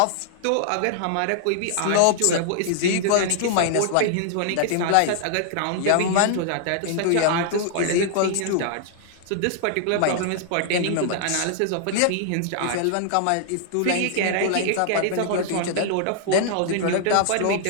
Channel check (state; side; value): different; both; correlation -0.01